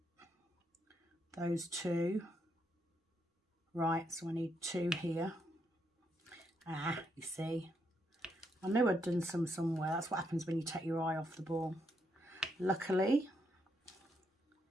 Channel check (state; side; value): normal; both; correlation 0.78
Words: Those two. Right, so I need two here. Ah, you see. I knew I'd done some somewhere. That's what happens when you take your eye off the ball. Luckily,